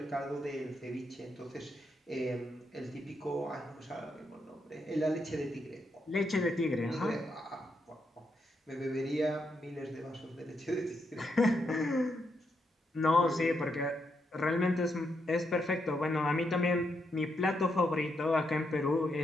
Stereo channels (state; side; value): normal; both; correlation 0.81